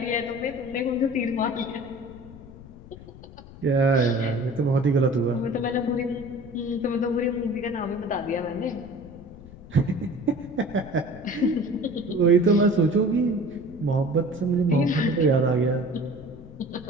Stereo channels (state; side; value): noise; left; rumble, 18 dB below the sound